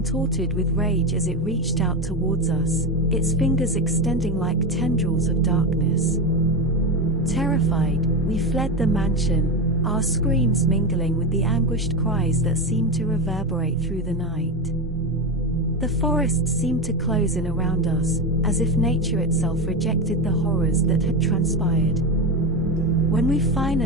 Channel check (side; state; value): both; normal; correlation 0.16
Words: with rage as it reached out towards us, its fingers extending like tendrils of darkness. Terrified, we fled the mansion, our screams mingling with the anguished cries that seemed to reverberate through the night. The forest seemed to close in around us, as if nature itself rejected the horrors that had transpired. When we